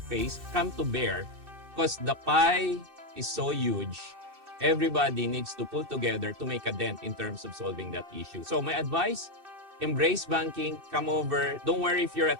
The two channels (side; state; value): left; late; 2.6 ms